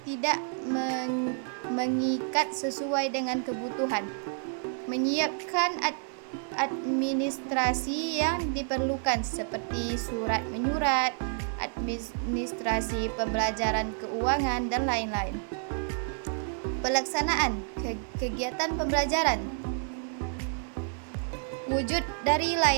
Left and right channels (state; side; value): silent; left; 58 dB below the other